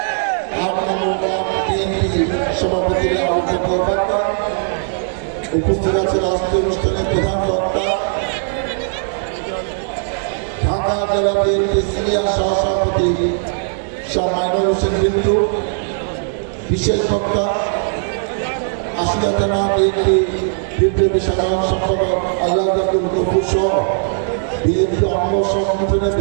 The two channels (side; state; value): left; silent; digital silence